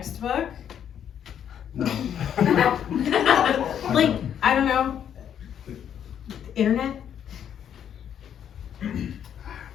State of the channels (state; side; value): quieter; right; 9.1 dB